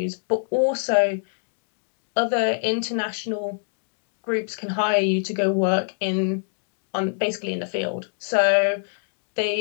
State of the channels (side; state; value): right; silent; digital silence